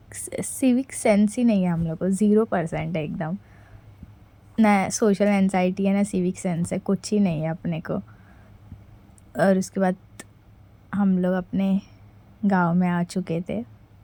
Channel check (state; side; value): identical; both; correlation 1.00